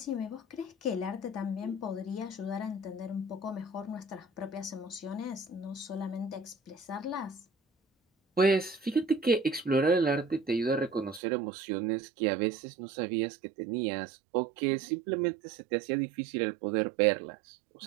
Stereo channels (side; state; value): left; drops out; at 11.2 s